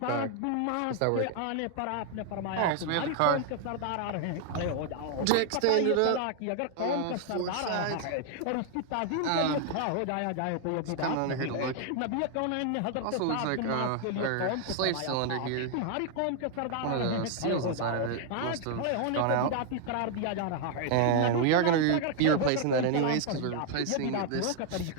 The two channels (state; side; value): different; both; correlation 0.00